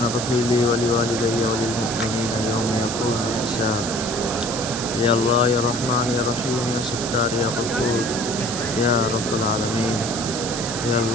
اغفر لي ولوالدي وللمؤمنين يوم يقوم الحساب. يا الله يا رحمن يا رحيم يا ستار يا غفور يا رب العالمين. يا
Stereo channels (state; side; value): noise; right; hiss, 5 dB below the sound